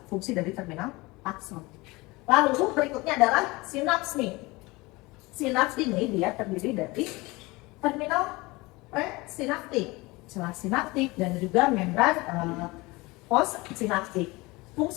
fungsi dari terminal akson. Lalu berikutnya adalah sinaps nih. Sinaps ini dia terdiri dari terminal presinaptik, celah sinaptik dan juga membran postsinaptik.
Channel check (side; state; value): right; quieter; 22.9 dB